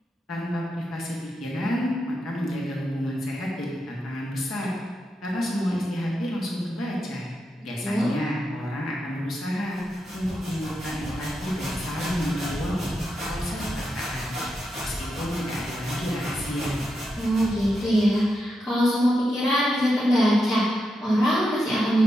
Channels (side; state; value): both; normal; correlation 0.86